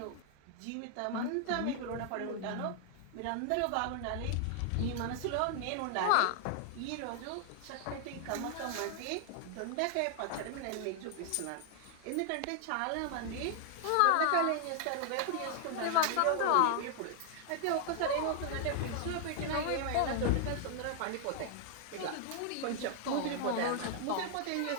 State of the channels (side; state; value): both; different; correlation 0.00